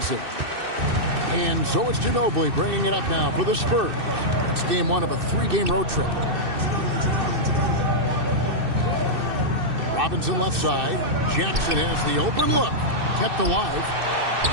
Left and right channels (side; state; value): left; late; 2.6 ms